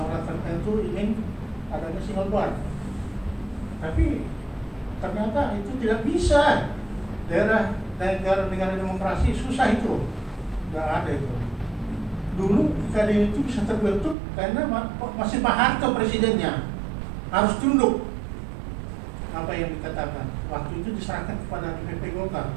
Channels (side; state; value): left; drops out; at 14.2 s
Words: tertentu ingin adanya single bar, tapi ternyata itu tidak bisa. Negara demokrasi susah itu, nggak ada itu. Dulu Kadin itu bisa terbentuk karena masih Pak Harto presidennya, harus tunduk apa yang dikatakan. Waktu itu diserahkan kepada DPP Golkar